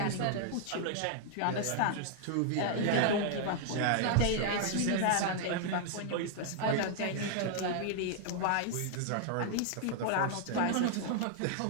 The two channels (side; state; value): both; different; correlation 0.00